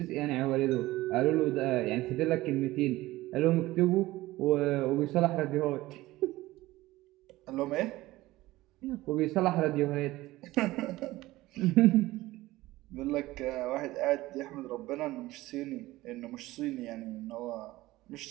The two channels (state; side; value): quieter; left; 18.0 dB